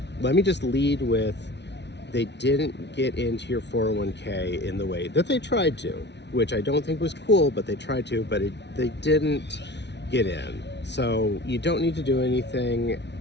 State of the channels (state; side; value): late; right; 0.50 ms